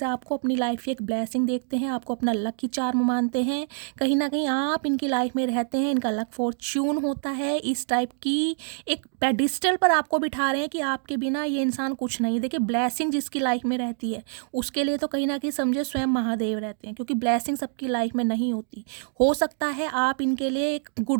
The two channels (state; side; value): silent; left; digital silence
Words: आपको अपनी लाइफ की एक ब्लेसिंग देखते हैं, आपको अपना लकी चार्म मानते हैं, कहीं ना कहीं आप इनकी लाइफ में रहते हैं, इनका लक फॉर्च्यून होता है। इस टाइप की एक पेडिस्टल पर आपको बिठा रहे हैं कि आपके बिना ये इंसान कुछ नहीं। देखिए, ब्लेसिंग जिसकी लाइफ में रहती है उसके लिए तो कहीं ना कहीं समझे स्वयं महादेव रहते हैं, क्योंकि ब्लेसिंग सबकी लाइफ में नहीं होती। हो सकता है आप इनके लिए एक